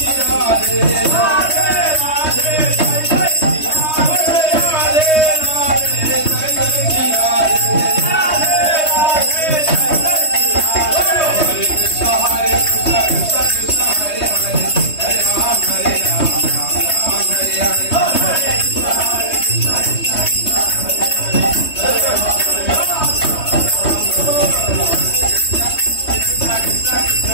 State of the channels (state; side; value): late; right; 3.2 ms